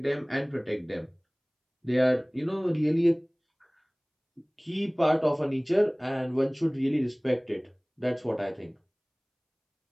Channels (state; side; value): identical; both; correlation 1.00